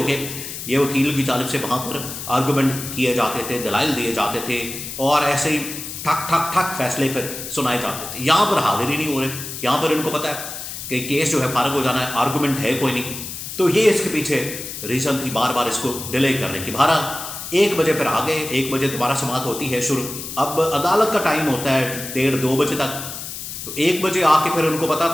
کے یہ وکیل کی جانب سے وہاں پر آرگومنٹ کیے جاتے تھے، دلائل دیے جاتے تھے، اور ایسے ہی ٹھک ٹھک ٹھک فیصلے پہ سنائے جاتے تھے۔ یہاں پر حاضر ہی نہیں ہو رہے، یہاں پر ان کو پتہ ہے کہ کیس جو ہے فارغ ہو جانا ہے، آرگومنٹ ہے کوئی نہیں، تو یہ اس کے پیچھے ریزن تھی بار بار اس کو ڈیلے کرنے کی۔ بہرحال 1 بجے پھر آ گئے، 1 بجے دوبارہ سماعت ہوتی ہے شروع۔ اب عدالت کا ٹائم ہوتا ہے 1:30-2 بجے تک، تو 1 بجے آ کے پھر ان کو پتا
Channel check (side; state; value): left; noise; hiss, 8 dB below the sound